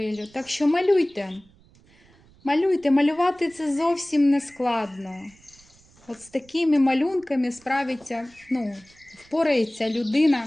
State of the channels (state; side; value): noise; right; rumble, 29 dB below the sound